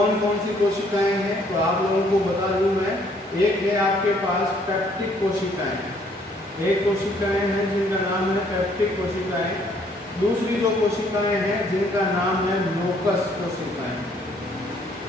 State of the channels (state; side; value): normal; both; correlation 0.64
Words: कौन सी कोशिकाएं हैं, तो आप लोगों को बता दूं मैं। एक है आपके पास पेप्टिक कोशिकाएं, एक कोशिकाएं हैं जिनका नाम है पेप्टिक कोशिकाएं। दूसरी जो कोशिकाएं हैं जिनका नाम है म्यूकस कोशिकाएं,